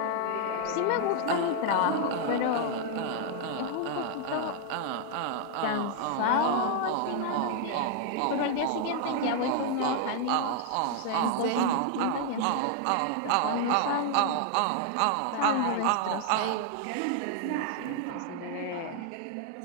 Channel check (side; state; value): both; different; correlation 0.00